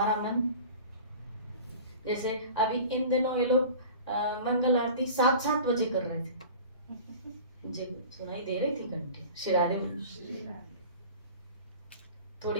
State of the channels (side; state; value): both; inverted; correlation -0.40